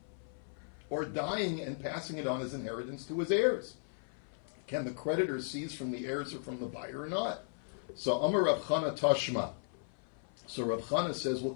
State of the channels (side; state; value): right; silent; 54 dB below the other